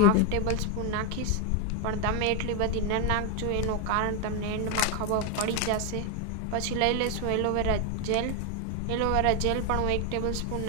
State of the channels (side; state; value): both; different; correlation 0.01